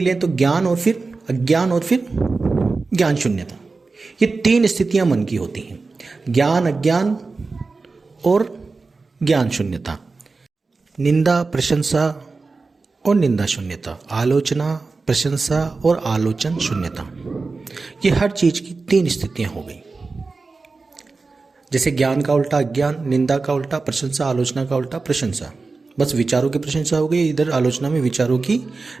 तो ज्ञान और फिर अज्ञान और फिर ज्ञान शून्यता, ये 3 स्थितियां मन की होती हैं, ज्ञान, अज्ञान और ज्ञान शून्यता। निंदा, प्रशंसा और निंदा शून्यता, आलोचना, प्रशंसा और आलोचन शून्यता, ये हर चीज की 3 स्थितियां हो गई। जैसे ज्ञान का उल्टा अज्ञान, निंदा का उल्टा प्रशंसा, आलोचना का उल्टा प्रशंसा। बस विचारों की प्रशंसा हो गई, इधर आलोचना में विचारों की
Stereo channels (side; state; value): left; quieter; 4.0 dB